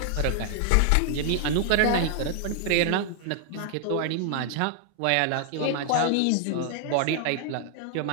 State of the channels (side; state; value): both; different; correlation 0.00